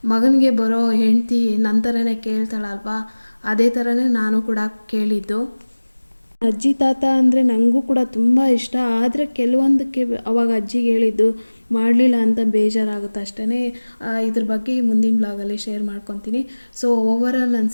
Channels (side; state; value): both; inverted; correlation -1.00